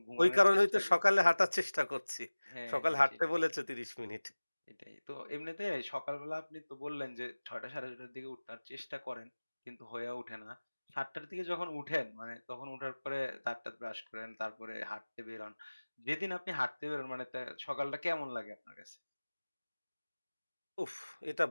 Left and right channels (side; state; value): both; inverted; correlation -1.00